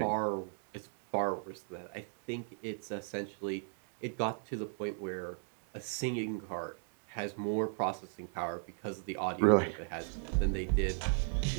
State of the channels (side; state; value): left; silent; 53 dB below the other